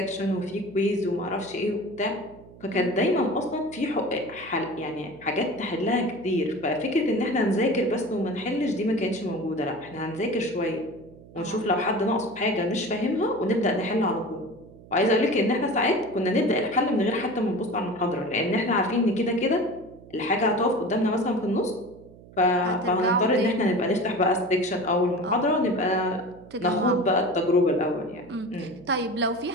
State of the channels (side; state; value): right; noise; hum, 21 dB below the sound